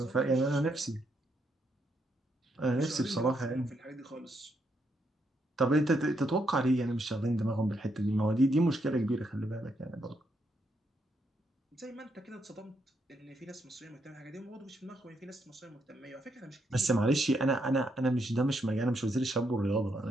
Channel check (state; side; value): normal; both; correlation 0.78